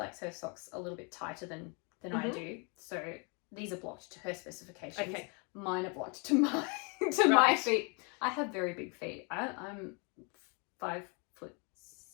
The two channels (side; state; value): right; quieter; 34.1 dB